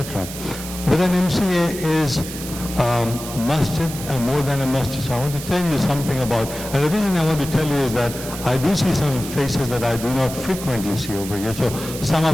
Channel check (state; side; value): noise; right; hiss, 10 dB below the sound